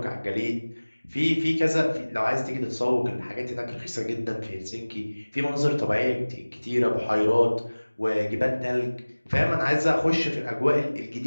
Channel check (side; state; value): both; inverted; correlation -1.00